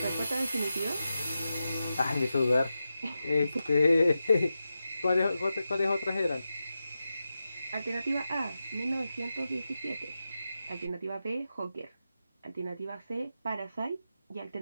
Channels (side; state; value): both; inverted; correlation -0.90